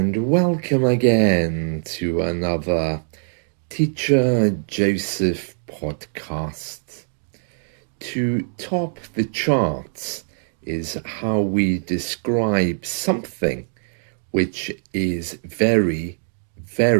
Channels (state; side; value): silent; left; digital silence